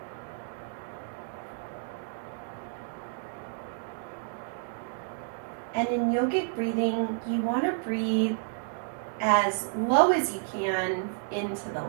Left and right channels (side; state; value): left; silent; digital silence